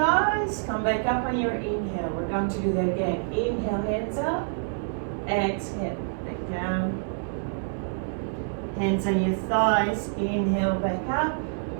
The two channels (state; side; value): silent; left; digital silence